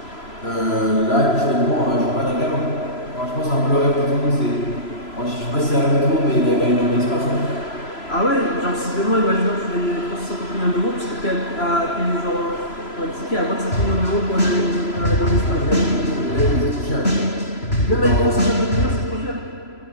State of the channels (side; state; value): right; late; 3.0 ms